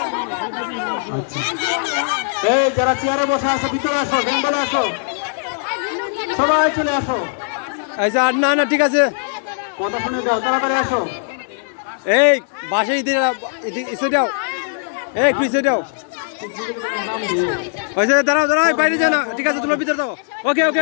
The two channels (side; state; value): right; silent; digital silence